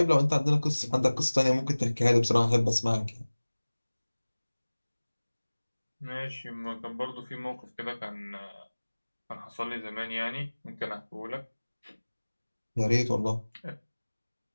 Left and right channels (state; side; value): inverted; both; correlation -1.00